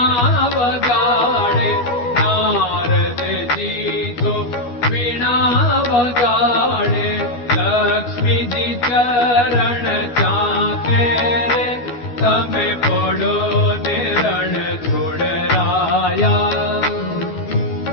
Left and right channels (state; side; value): late; right; 12 ms